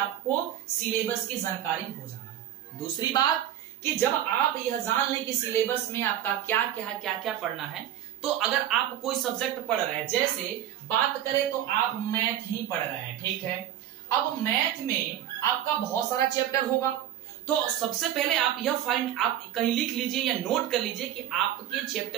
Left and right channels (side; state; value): left; quieter; 11.7 dB